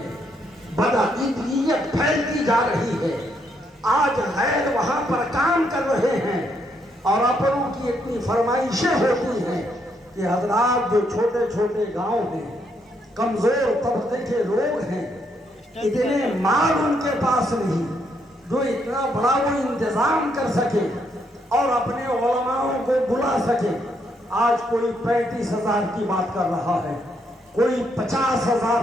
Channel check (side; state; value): both; normal; correlation 0.75